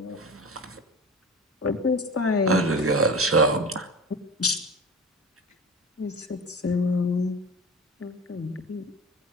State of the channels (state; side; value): normal; both; correlation 0.31